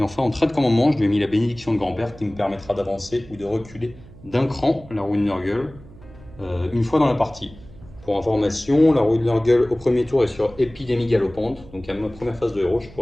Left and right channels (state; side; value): noise; right; hum, 20 dB below the sound